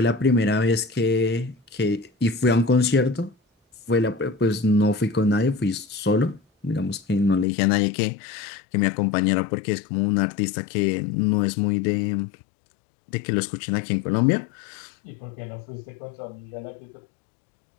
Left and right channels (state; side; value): drops out; right; at 7.5 s